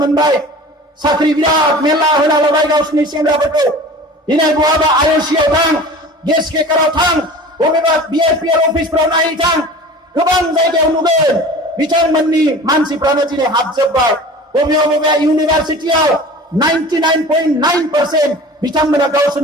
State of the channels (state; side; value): normal; both; correlation 0.40